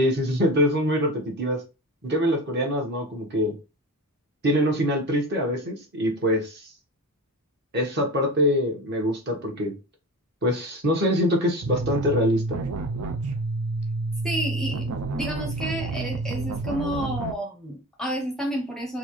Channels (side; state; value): both; normal; correlation 0.31